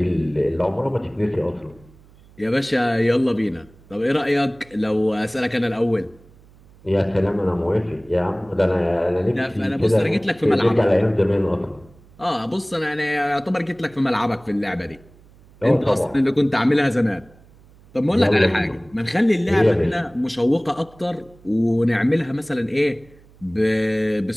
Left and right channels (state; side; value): noise; right; hum, 26 dB below the sound